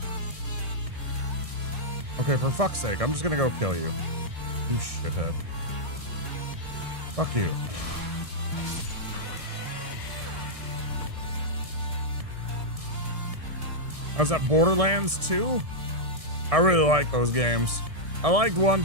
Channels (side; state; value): left; late; 1.6 ms